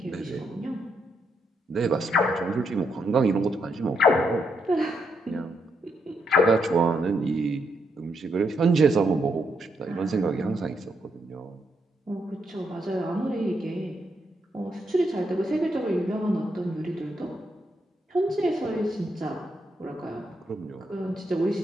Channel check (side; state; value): both; normal; correlation 0.78